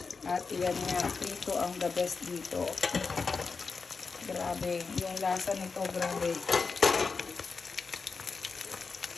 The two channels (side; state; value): right; quieter; 4.8 dB